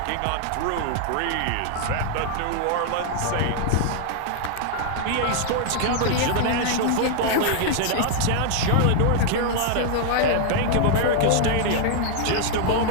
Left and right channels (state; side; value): different; both; correlation 0.00